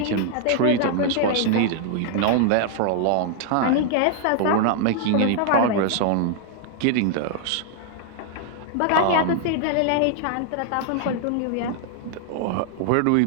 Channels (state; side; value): different; both; correlation -0.01